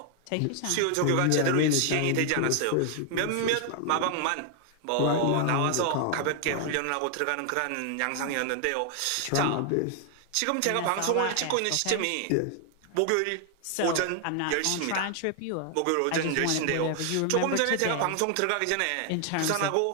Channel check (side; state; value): both; different; correlation 0.00